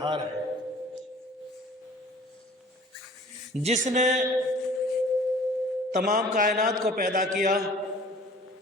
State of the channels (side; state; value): both; normal; correlation 0.49